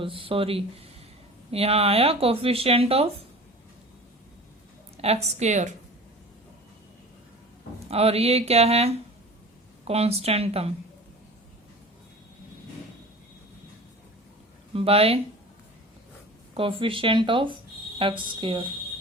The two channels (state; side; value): normal; both; correlation 0.38